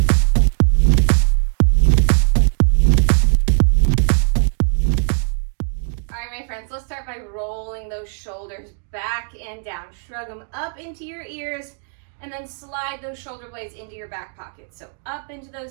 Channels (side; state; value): left; silent; 57 dB below the other